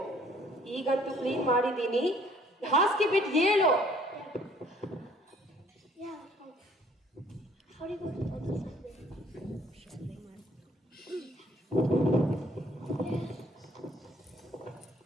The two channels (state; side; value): normal; both; correlation 0.60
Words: ಈಗಂತೂ ಕ್ಲೀನ್ ಮಾಡಿದೀನಿ, ಹಾಸಿಗೆ ಬಿಟ್ಟು ಹೇಳು.